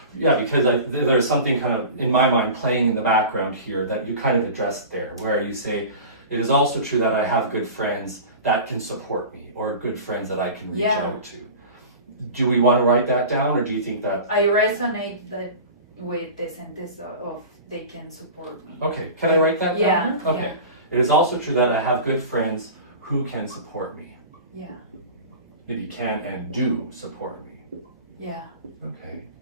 Yeah, because there's something kind of, in my mind, playing in the background here that you kind of addressed there, where you say, it is also true that I have good friends that can support me, or good friends that I can reach out to. Do we want to write that down, or do you think that? I resonate that with the sentence of they can support me. Okay, can I write that down? Yeah. Okay. Yeah. It is also true that I have good friends who can support me. Yeah. Maybe can and do support me. Yeah. Okay.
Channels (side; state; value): both; inverted; correlation -0.35